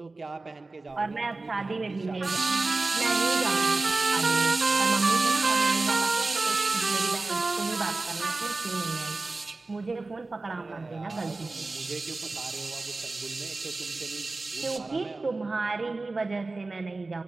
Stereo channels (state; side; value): quieter; left; 3.4 dB